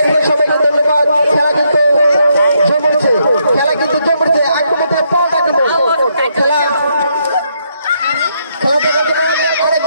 সবাইকে ধন্যবাদ। খেলা কিন্তু জমছে, আক্রমণে পথ আক্রমণ খেলা অনেক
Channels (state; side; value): inverted; both; correlation -0.76